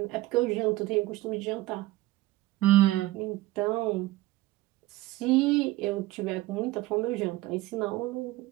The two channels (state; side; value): quieter; left; 17.7 dB